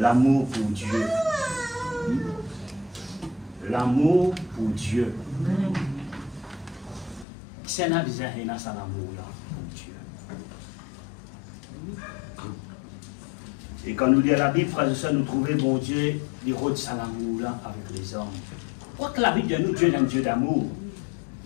pour Dieu. L'amour pour Dieu. C'est un bizarre, il y a ça l'amour là pour Dieu. Et quand nous lisons la Bible, frères et sœurs, nous trouvons bon Dieu, il rôde ça l'amour là avec les hommes. Quoi que la Bible dit nous, Dieu est un Dieu d'amour.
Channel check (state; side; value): drops out; right; at 7.2 s